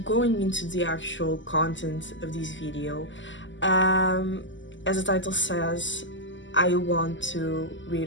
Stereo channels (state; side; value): late; right; 0.54 ms